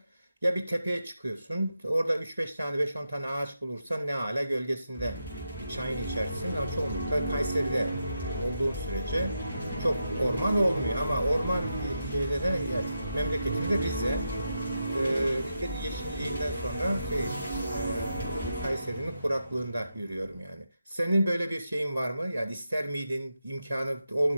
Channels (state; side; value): inverted; both; correlation -0.86